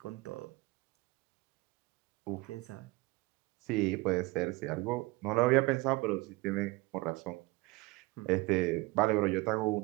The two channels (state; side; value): quieter; left; 22.8 dB